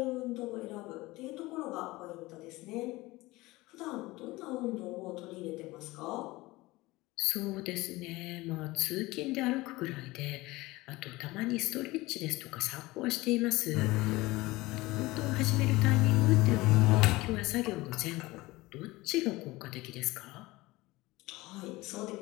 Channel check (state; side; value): quieter; right; 20.3 dB